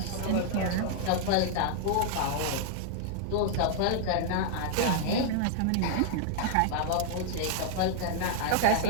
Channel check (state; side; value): different; both; correlation 0.00